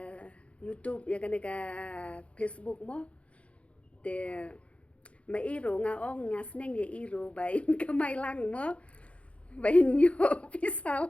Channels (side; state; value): right; late; 0.062 ms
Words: YouTube ya kane ka Facebook mo te ma iro nga ong nga sneng ya iro ba in kamai lang mo ba in yo